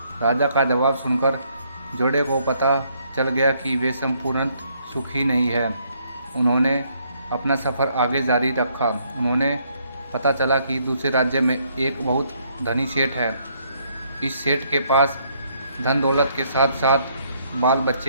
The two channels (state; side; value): inverted; both; correlation -0.70